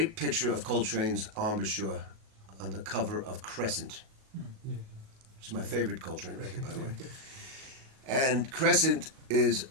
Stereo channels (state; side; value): late; left; 37 ms